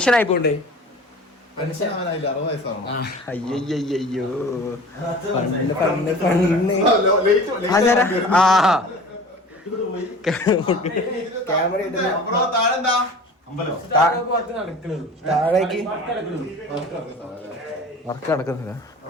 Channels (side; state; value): both; normal; correlation 0.41